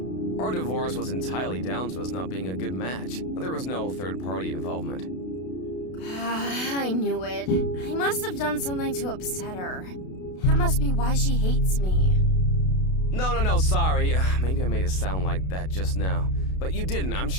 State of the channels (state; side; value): late; right; 32 ms